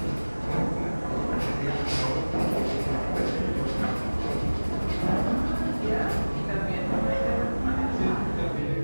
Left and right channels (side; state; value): both; inverted; correlation -1.00